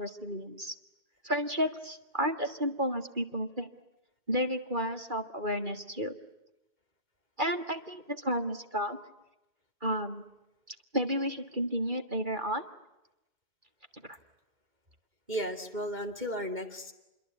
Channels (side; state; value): left; late; 2.2 ms